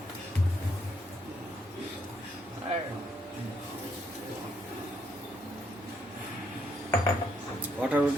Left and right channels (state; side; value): normal; both; correlation 0.74